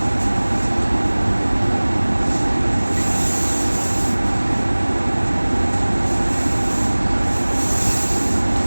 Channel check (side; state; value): both; inverted; correlation -1.00